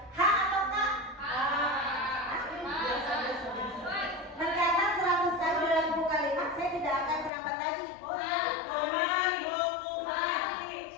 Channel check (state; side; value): drops out; right; at 7.3 s